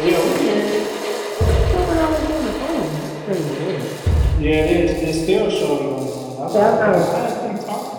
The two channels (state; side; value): identical; both; correlation 1.00